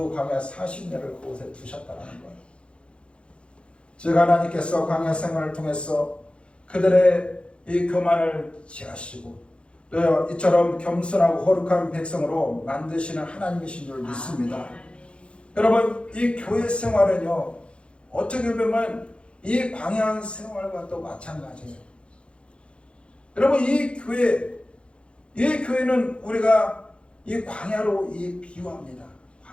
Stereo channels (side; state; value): right; late; 0.058 ms